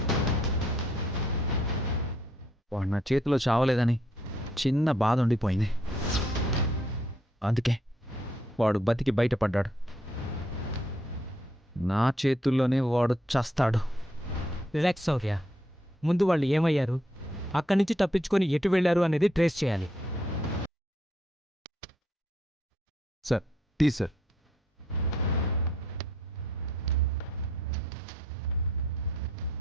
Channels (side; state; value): both; normal; correlation 0.71